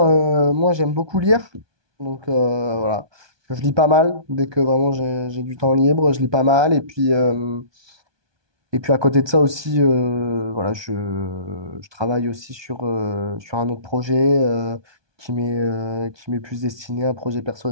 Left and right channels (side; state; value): left; late; 1.2 ms